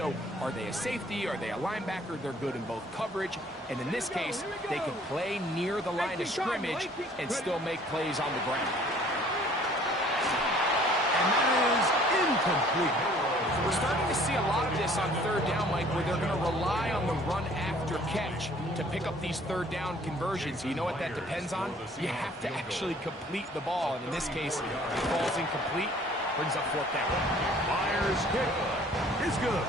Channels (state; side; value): normal; both; correlation 0.56